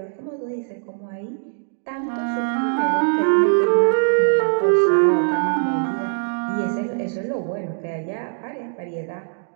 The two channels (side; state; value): left; silent; 64 dB below the other